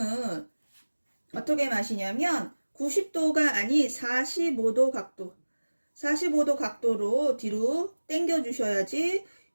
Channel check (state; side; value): inverted; both; correlation -1.00